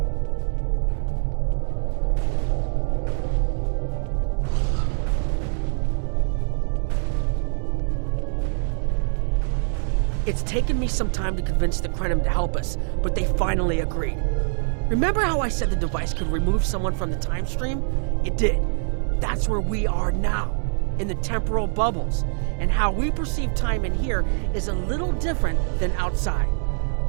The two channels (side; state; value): left; silent; 63 dB below the other